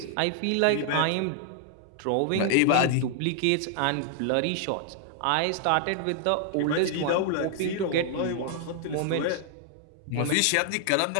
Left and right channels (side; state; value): both; different; correlation 0.00